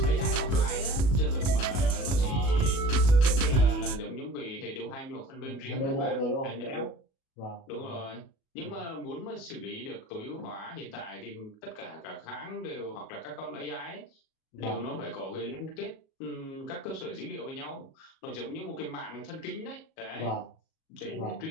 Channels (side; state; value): right; late; 37 ms